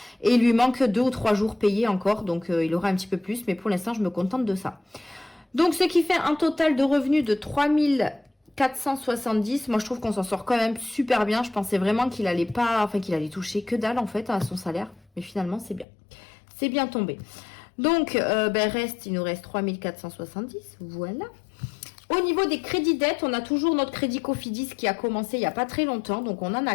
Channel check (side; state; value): right; drops out; at 15.9 s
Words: Et il lui manque 2 ou 3 jours payés encore. Donc, il aura un petit peu plus. Mais pour l'instant, je me contente de ça. Donc, ce qui fait un total de revenus de 3470. Moi, je trouve qu'on s'en sort quand même super bien. Je pensais vraiment qu'il allait toucher que dalle, en fait, à son salaire. Mais finalement, c'est bien. C'est bien tombé. Donc, il nous reste 3470. Voilà. Au niveau des crédits dettes, on a toujours notre crédit Cofidis qui a commencé il n'y a pas très longtemps. Donc, on n'en